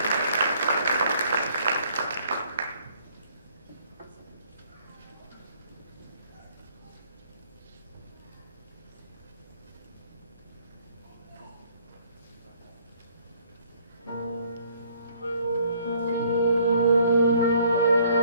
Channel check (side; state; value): both; inverted; correlation -0.62